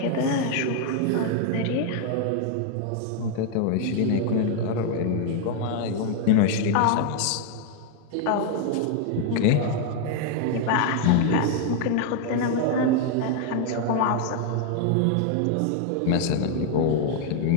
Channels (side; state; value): both; different; correlation 0.00